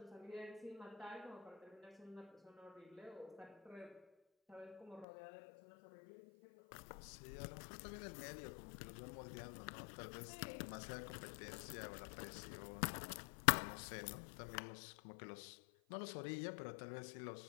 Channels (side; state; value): right; drops out; at 5.1 s